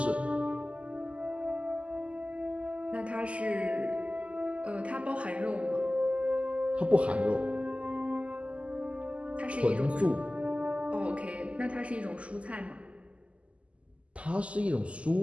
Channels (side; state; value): left; late; 0.060 ms